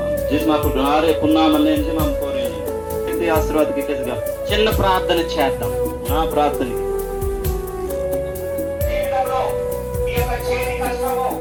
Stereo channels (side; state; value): both; identical; correlation 1.00